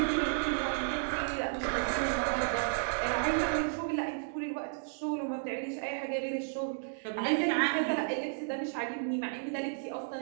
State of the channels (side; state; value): left; silent; digital silence